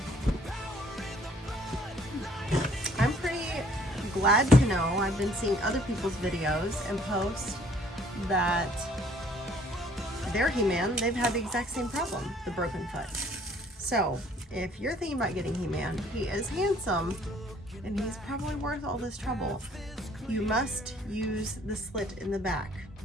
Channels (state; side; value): normal; both; correlation 0.59